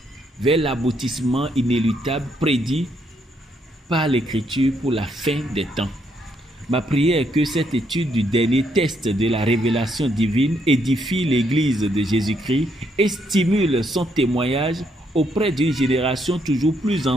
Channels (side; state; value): both; normal; correlation 0.74